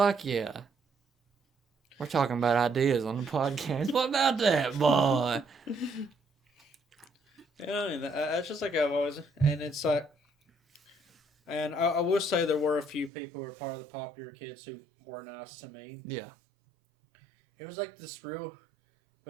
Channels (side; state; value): left; drops out; at 13.1 s